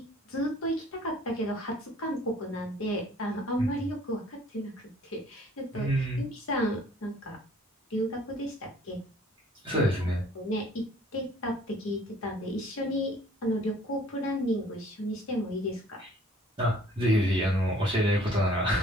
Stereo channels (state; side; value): normal; both; correlation 0.55